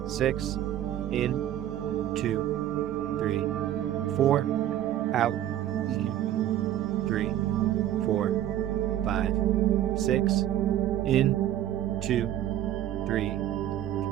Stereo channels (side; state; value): left; quieter; 12.1 dB